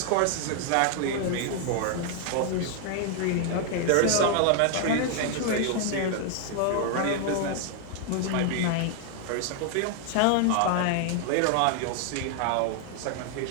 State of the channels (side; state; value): both; different; correlation 0.00